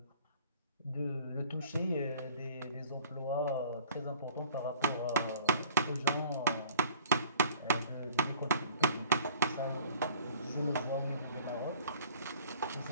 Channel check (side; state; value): both; inverted; correlation -0.51